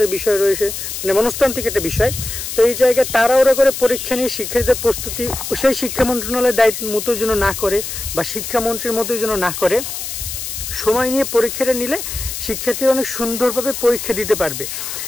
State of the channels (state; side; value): noise; left; hiss, 6 dB below the sound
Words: বিষয় রয়েছে, মানে মনস্তান্ত্রিক একটা বিষয়। তো এই জায়গায় তাড়াহুড়ো করে পরীক্ষা নিয়ে শিক্ষার্থীদের প্রস্তুতি সেই শিক্ষা মন্ত্রণালয়ের দায়িত্ব মতো যেন না করে বা শিক্ষামন্ত্রীর মতোই যেন না করে, সময় নিয়ে পরীক্ষাটা নিলে শিক্ষার্থীরা অনেক সুন্দরভাবে পরীক্ষা দিতে পারবে